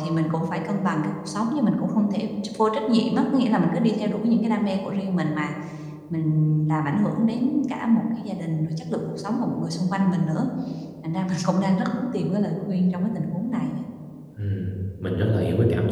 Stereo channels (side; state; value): both; identical; correlation 1.00